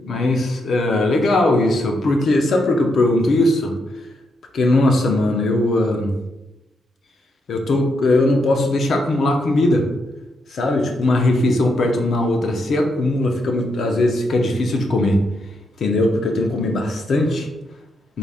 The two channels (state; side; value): normal; both; correlation 0.80